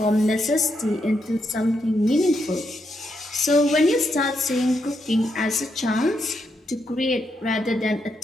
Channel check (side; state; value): both; normal; correlation 0.80